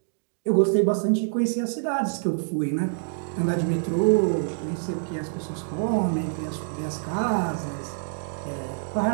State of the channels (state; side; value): silent; left; digital silence